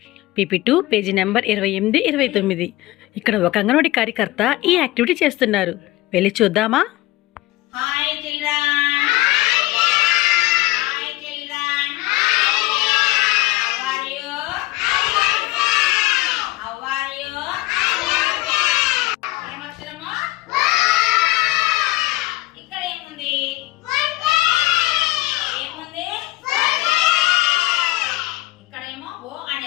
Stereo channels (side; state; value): right; quieter; 18.3 dB